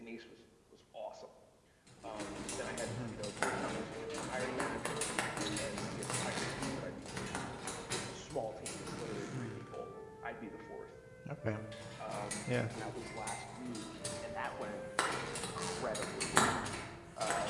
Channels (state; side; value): identical; both; correlation 1.00